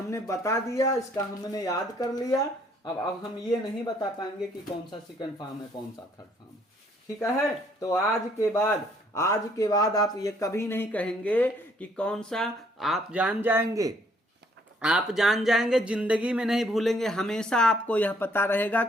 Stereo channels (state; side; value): normal; both; correlation 0.65